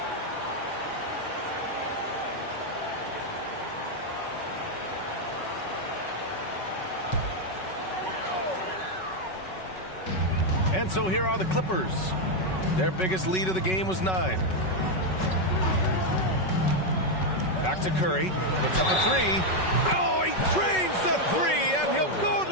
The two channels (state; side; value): late; right; 5.3 ms